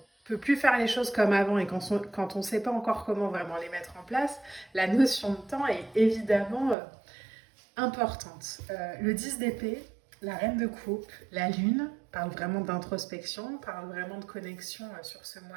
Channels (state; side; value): drops out; left; at 6.8 s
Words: peut plus faire les choses comme avant et quand on ne sait pas encore comment vraiment les mettre en place, la notion de temps est évidemment importante. Le 10 d'épée, la reine de coupe, la lune, parle vraiment d'introspection, parle vraiment de connexion sur ce